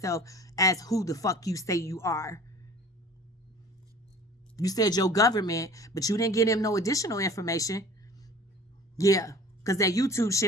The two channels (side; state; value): both; normal; correlation 0.45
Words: as who the fuck you say you are. You said your government, but you didn't give him no additional information. Yeah, because that YouTube